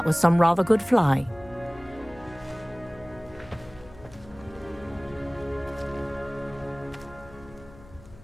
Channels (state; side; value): noise; left; hum, 21 dB below the sound